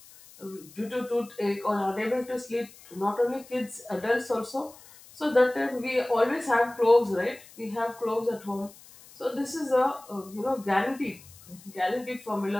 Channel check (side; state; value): left; noise; hiss, 22 dB below the sound